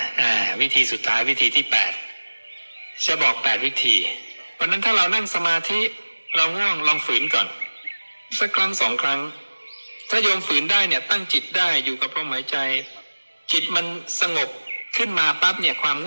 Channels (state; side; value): inverted; both; correlation -1.00